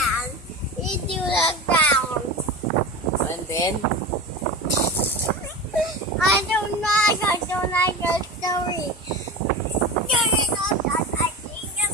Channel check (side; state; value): both; normal; correlation 0.28